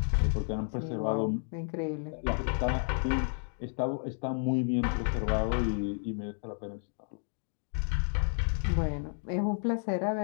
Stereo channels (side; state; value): right; silent; 57 dB below the other